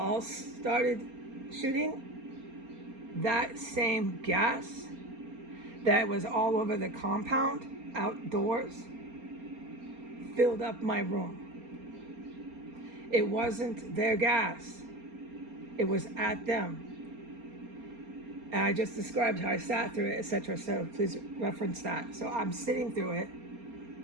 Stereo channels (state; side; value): late; left; 4.3 ms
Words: started shooting, that same gas that was all over the compound outdoors filled up my room. It wasn't their gas. It was at them. And I just described how I sat through it, etc. So please reference that. So I'm sitting through it